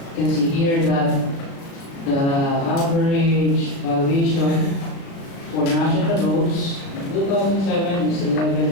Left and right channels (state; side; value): late; right; 36 ms